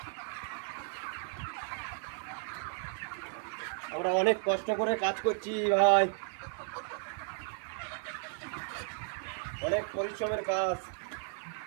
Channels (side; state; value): left; silent; 55 dB below the other